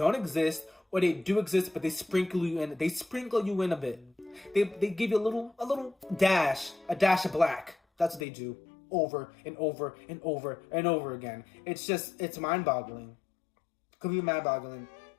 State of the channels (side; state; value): right; drops out; at 8.2 s